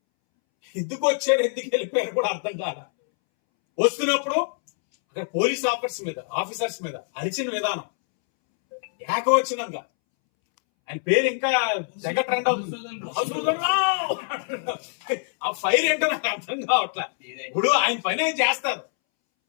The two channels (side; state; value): right; silent; 62 dB below the other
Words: ఎందుకు వచ్చారు, ఎందుకు వెళ్ళిపోయారు కూడా అర్థం కాల. వస్తున్నప్పుడు అక్కడ పోలీస్ ఆఫీసర్స్ మీద అరిచిన విధానం ఏకవచనంగా, ఆయన పేరు ఇంకా తెగ ట్రెండ్ అవుతుంది. ఆ ఫైర్ ఏంటో నాకు అర్థం కావట్లా. ఇప్పుడు ఆయన పని ఏం చేస్తారు.